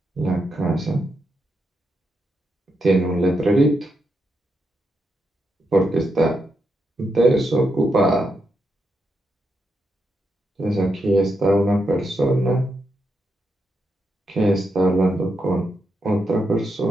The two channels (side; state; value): both; normal; correlation 0.83